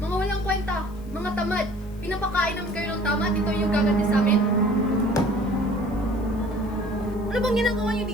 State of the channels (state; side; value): noise; left; hiss, 28 dB below the sound